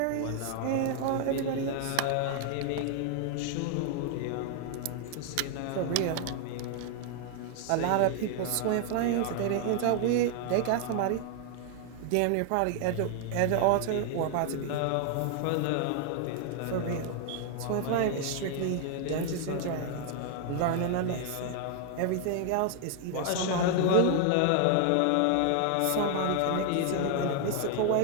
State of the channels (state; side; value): different; both; correlation 0.00